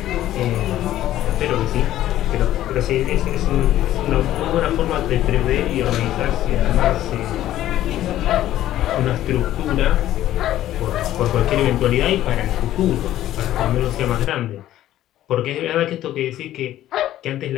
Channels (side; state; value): right; quieter; 13.3 dB